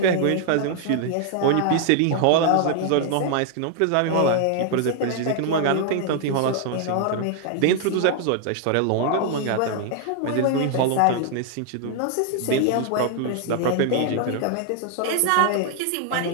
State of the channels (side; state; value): both; different; correlation 0.00